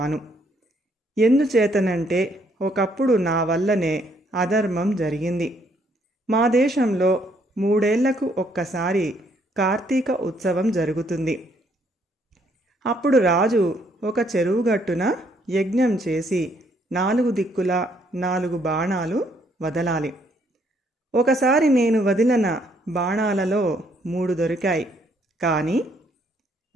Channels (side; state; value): both; normal; correlation 0.69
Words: ఎందుచేతనంటే ఒకప్పుడు నా వల్లనే అధర్మం జరిగింది. మా దేశంలో 3 ఏళ్లకు ఒక్కసారి కార్తీక ఉత్సవం జరుగుతుంది. అప్పుడు రాజు ఒక చెరువుగట్టున యజ్ఞం చేసి 4 దిక్కులా 4 బాణాలు వదలాలి. ఒకసారి నేను వదిలిన బాణాలలో 3 దొరికాయి. కానీ